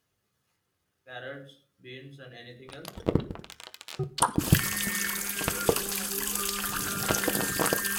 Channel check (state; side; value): identical; both; correlation 1.00